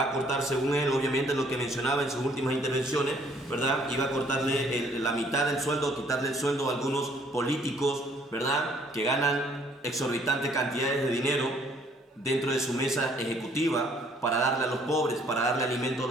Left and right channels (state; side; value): normal; both; correlation 0.62